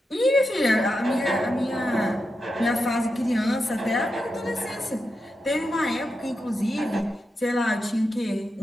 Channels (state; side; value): normal; both; correlation 0.88